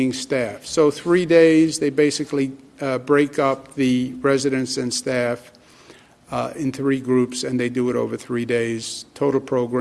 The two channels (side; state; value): both; identical; correlation 1.00